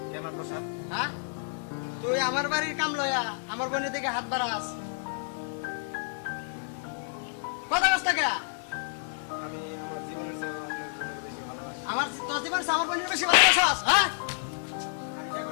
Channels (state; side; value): silent; right; 58 dB below the other